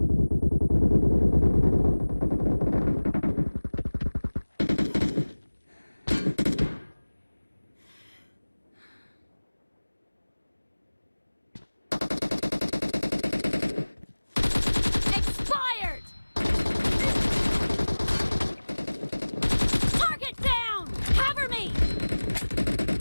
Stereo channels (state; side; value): inverted; both; correlation -1.00